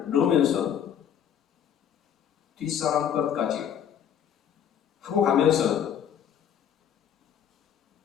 넣으면서 뒷사람 것까지 하고 가면서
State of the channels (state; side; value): quieter; right; 8.9 dB